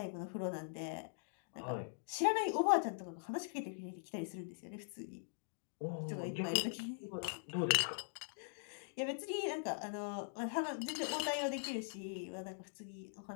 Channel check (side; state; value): right; silent; digital silence